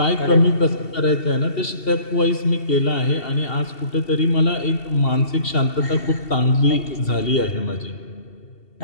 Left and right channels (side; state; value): right; late; 2.7 ms